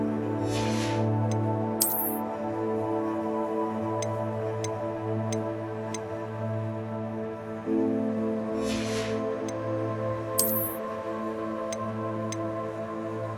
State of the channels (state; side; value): identical; both; correlation 1.00